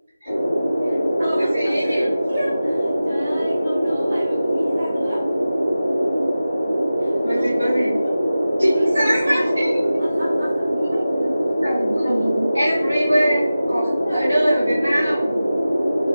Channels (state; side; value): inverted; both; correlation -0.95